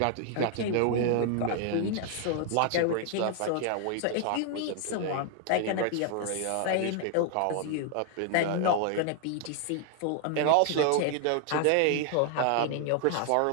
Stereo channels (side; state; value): both; different; correlation 0.00